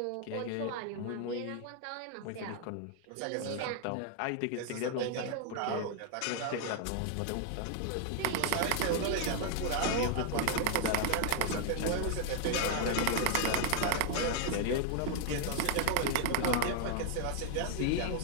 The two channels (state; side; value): different; both; correlation 0.00